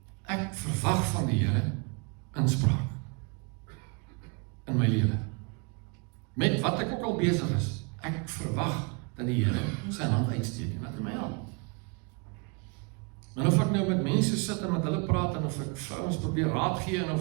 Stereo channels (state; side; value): quieter; left; 32.7 dB